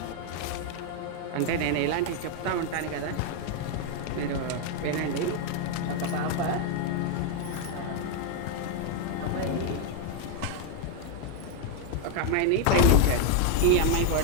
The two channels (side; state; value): both; different; correlation 0.01